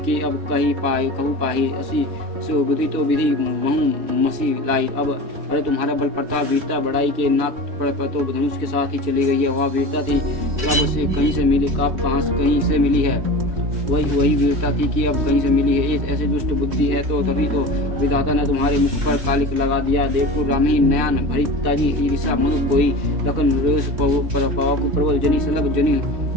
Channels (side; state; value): left; late; 3.2 ms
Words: की अब कहू पाही असी सो बुद्धि तो विधि महू मसी लाई। अब अरे तुम्हारा बल प्रताप वीरता बढ़ाई के नाक पर तो धनुष के साथ ही चली गई है। वह वीरता थी कब से कहीं से मिली कब कहीं से मिली है। वही वीरता थी कि अब कहीं से मिली है। ऐसे दुष्ट बुद्धि है तो तभी तो विधाता ने तुम्हारे मुख पर कालिक लगा दिया। देखो रामी नयन भरी ताजी ईर्षा मधु कोई लखन रोष पवाकु प्रबल जनी सलभ जनी